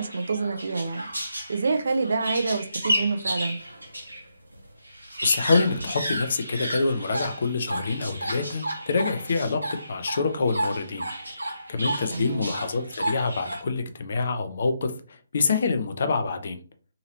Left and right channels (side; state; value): both; inverted; correlation -0.81